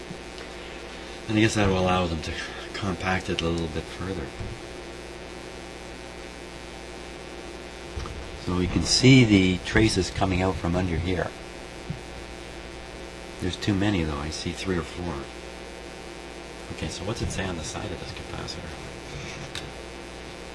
And I guess that will allow them to compact it a little bit further. So you can see the traces coming out from under here. There's too many though. I see 3 or 4. Okay, so what's it say on the side of this capacitor?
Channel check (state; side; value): identical; both; correlation 1.00